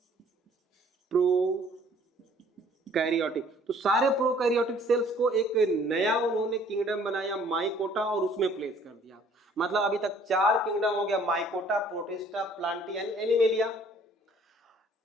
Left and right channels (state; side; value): normal; both; correlation 0.57